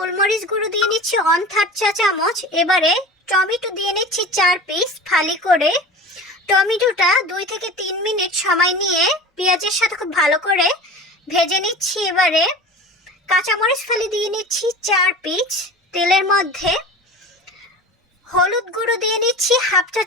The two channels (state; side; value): normal; both; correlation 0.35